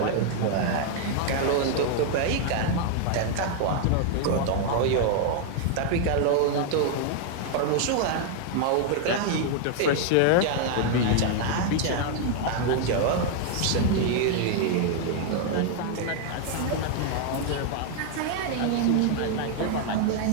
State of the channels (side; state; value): both; different; correlation 0.00